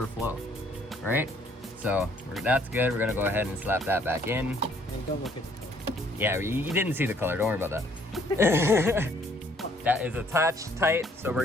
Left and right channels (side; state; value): both; normal; correlation 0.63